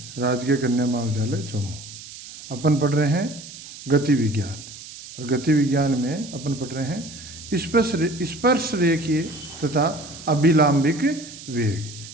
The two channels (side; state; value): right; noise; hiss, 15 dB below the sound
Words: राजकीय कन्या महाविद्यालय जम्मू। अपन पढ़ रहे हैं गति विज्ञान, और गति विज्ञान में अपन पढ़ रहे हैं स्पर्श रेखीय तथा अभिलाम्बिक